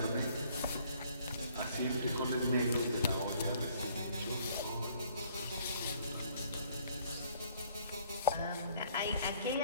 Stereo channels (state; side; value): inverted; both; correlation -0.60